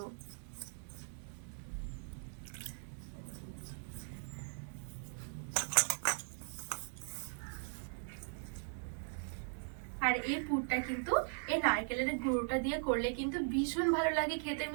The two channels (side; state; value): left; silent; digital silence